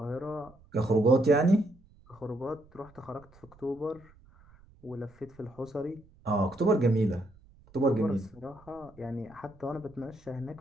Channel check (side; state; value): right; noise; rumble, 26 dB below the sound